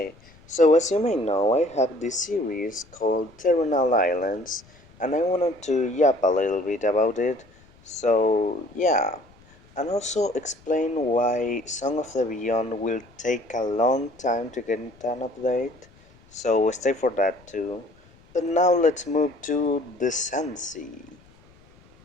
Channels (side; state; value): left; noise; rumble, 27 dB below the sound